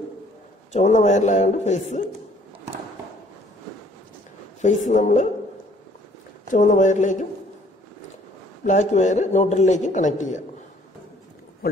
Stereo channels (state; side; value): normal; both; correlation 0.59